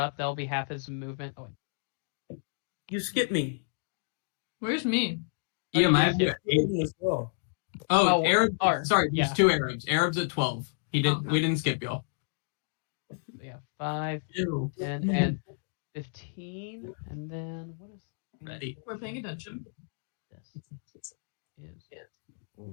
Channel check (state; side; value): silent; right; digital silence